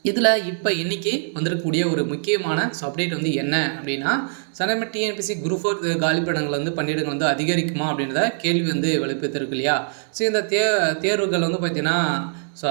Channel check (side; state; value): left; silent; 60 dB below the other